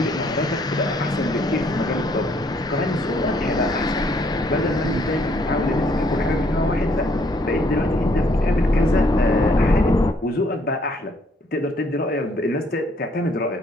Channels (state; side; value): normal; both; correlation 0.67